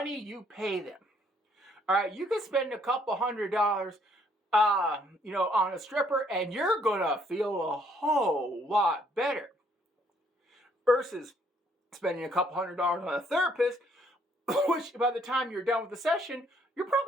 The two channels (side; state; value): both; normal; correlation 0.67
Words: you pay them. All right, you can spend a couple $100, on a stripper, and you're gonna feel a whole lot better versus spending a couple $100 on a therapist, which by the time you're done with the session, you're